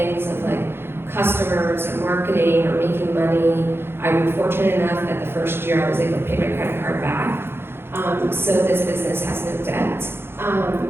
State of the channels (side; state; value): left; late; 0.11 ms